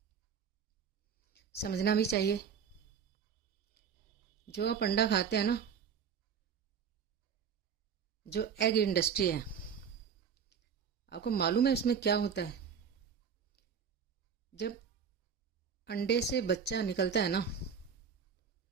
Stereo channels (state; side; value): quieter; left; 7.0 dB